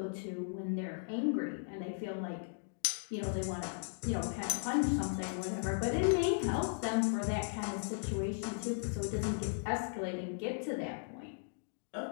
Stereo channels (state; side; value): silent; right; digital silence